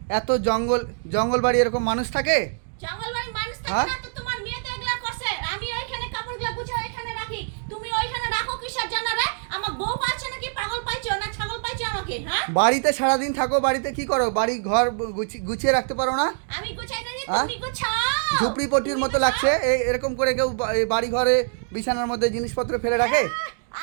এত জঙ্গল জঙ্গল বাড়ি এরকম মানুষ থাকে? জঙ্গলবাড়ির মানুষ থাকে হ্যাঁ? না তো তোমার মেয়ে তো এগুলা করছে। আমি ওইখানে কাপড়গুলো গুছিয়ে ওইখানে রাখি, তুমি ওইখানে রাখো কিসের জন্য রে? আমার বউ পাচ্ছে নাকি পাগল পাইছো না ছাগল পাইছো আমাকে? হ্যাঁ, বাড়িতে সারাদিন থাকো, বাড়িতে কি করো? বাড়ি ঘর গুছিয়ে রাখতে পারো না? আমি গুছাই না, হ্যাঁ? তুমি গুছাও। ঝুপড়িপট্টির তুমি মতো গুছাও। লাগছে। এরকম করে কেউ এই বাড়ি ঘরে বিছানার মধ্যে জিনিসপত্র ফেলে রাখে?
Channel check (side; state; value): left; silent; digital silence